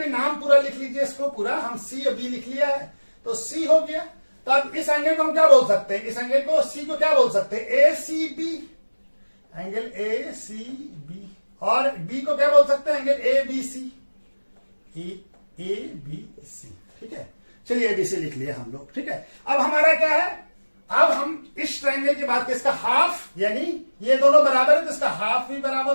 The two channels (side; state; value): both; inverted; correlation -1.00